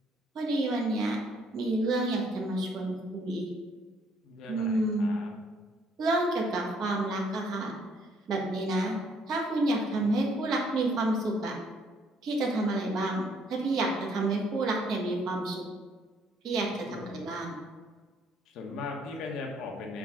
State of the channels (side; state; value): both; normal; correlation 0.65